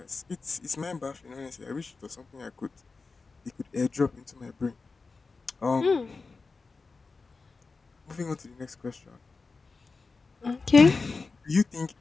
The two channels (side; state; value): right; quieter; 4.2 dB